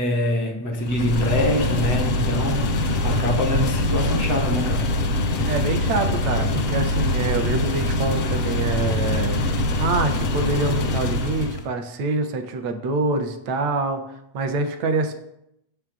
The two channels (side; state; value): left; late; 8.3 ms